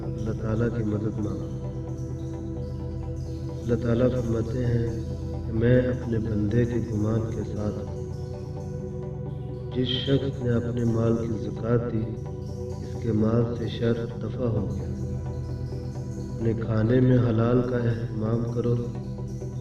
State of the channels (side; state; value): both; identical; correlation 1.00